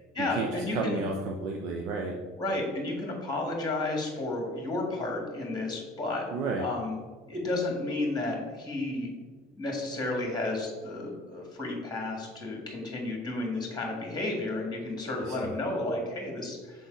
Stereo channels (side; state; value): both; normal; correlation 0.48